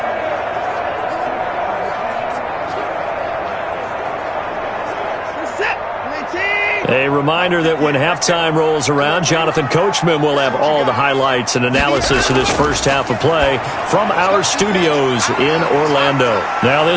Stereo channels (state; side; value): identical; both; correlation 1.00